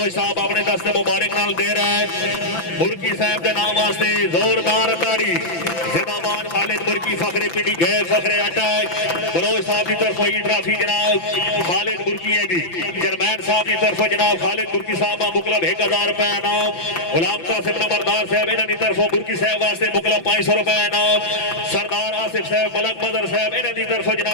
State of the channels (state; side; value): late; right; 5.9 ms